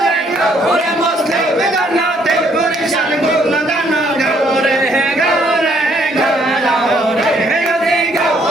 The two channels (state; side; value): normal; both; correlation 0.67